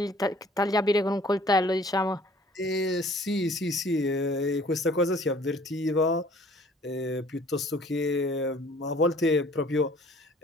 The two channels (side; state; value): both; normal; correlation 0.54